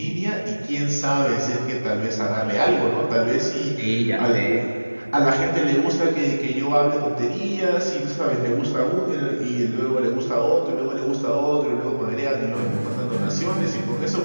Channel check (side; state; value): both; inverted; correlation -1.00